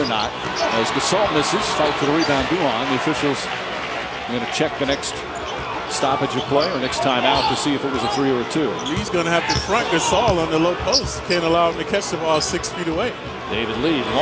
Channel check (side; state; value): both; identical; correlation 1.00